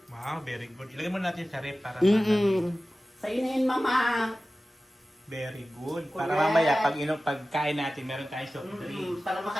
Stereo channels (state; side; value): normal; both; correlation 0.96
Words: Wow, very good. Ilagay mo natin sa rep para Sa'yo na yun, mama. Very good. Correct. Para mamaya pagkain natin meron tayong soft drinks. Para